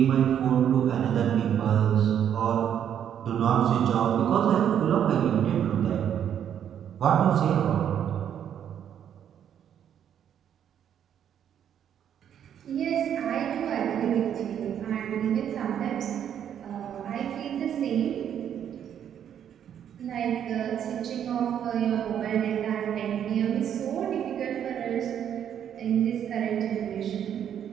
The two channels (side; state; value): left; quieter; 9.3 dB